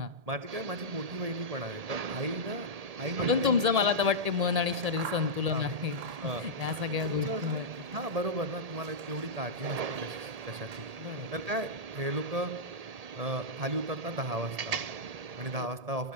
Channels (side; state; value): left; late; 1.8 ms